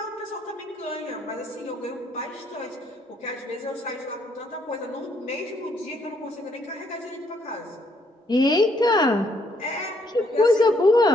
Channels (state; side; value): normal; both; correlation 0.70